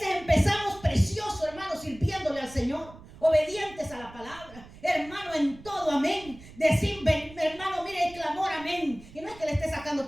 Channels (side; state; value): right; noise; rumble, 19 dB below the sound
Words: empezamos precioso, hermanos, sirviéndole al Señor, obedientes a la palabra, hermano, en todo, amén. Decir, hermano, mire el clamor, amén. Y no es que le esté sacando